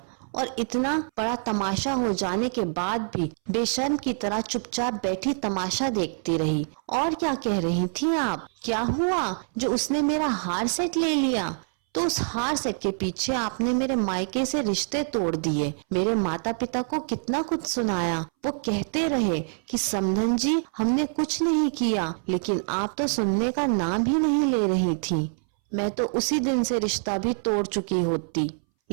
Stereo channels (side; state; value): left; silent; 61 dB below the other